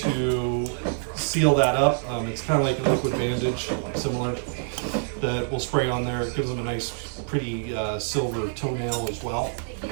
seal that up. It's kind of like a liquid bandage, similar, that we'll spray on there. It gives them a nice, pretty silver toenail as well.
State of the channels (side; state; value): left; silent; 61 dB below the other